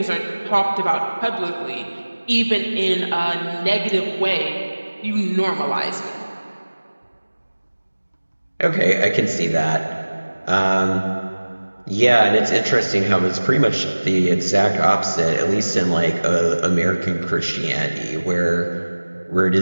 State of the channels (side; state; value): both; inverted; correlation -1.00